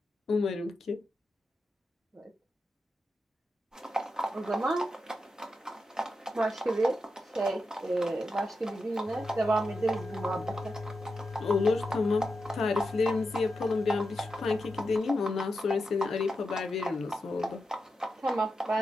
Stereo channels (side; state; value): both; normal; correlation 0.88